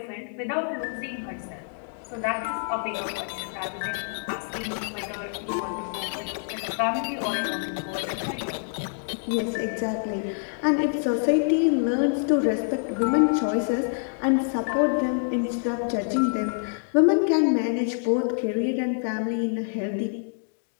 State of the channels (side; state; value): right; silent; digital silence